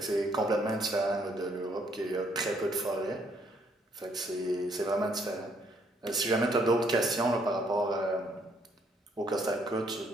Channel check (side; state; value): both; normal; correlation 0.68